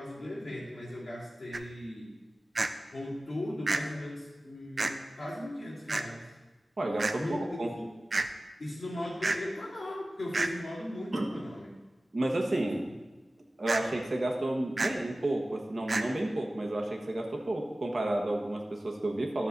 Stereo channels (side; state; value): both; normal; correlation 0.96